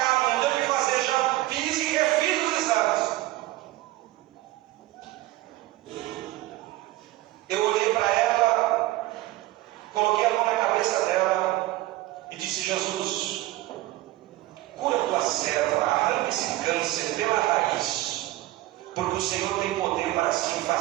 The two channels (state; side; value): quieter; left; 17.1 dB